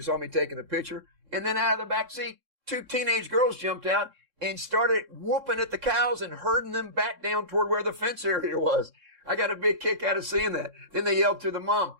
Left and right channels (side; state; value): left; late; 3.6 ms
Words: saw me taking the picture, and then out of the back seat, 2 teenage girls jumped out and started whooping at the cows and herding them back down toward where the fence area was. I got a big kick out of seeing that. Then they yelled to the mom,